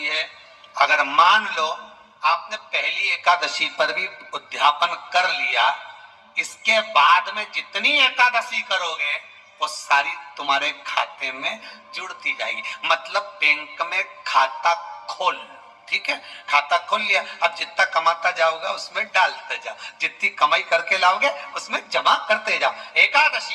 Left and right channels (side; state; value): both; identical; correlation 1.00